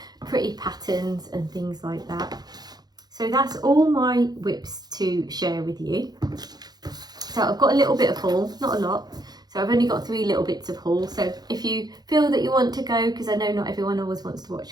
pretty patterns and things like that. So that's all my WIPs to share with you. So I've got a little bit of haul, not a lot. So I've only got 3 little bits of haul. So if you feel that you want to go, because I know not everyone always wants to watch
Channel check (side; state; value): left; late; 0.19 ms